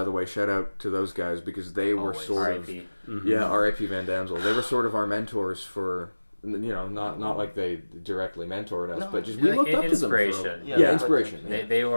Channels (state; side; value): inverted; both; correlation -1.00